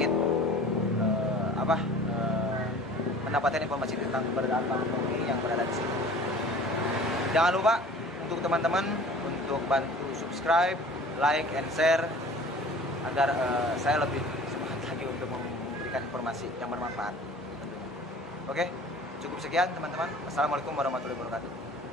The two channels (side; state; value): both; normal; correlation 0.45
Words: mendapatkan informasi tentang keberadaan Bang Tommy yang berada di sini. Jangan lupa untuk teman-teman untuk bantu subscribe, like, and share agar saya lebih semangat lagi untuk memberikan informasi yang bermanfaat. Oke, cukup sekian teman-teman. Assalamualaikum warahmatullahi wabarakatuh.